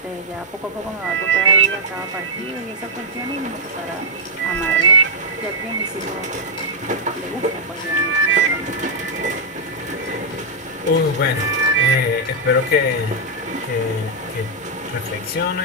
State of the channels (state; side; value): normal; both; correlation -0.05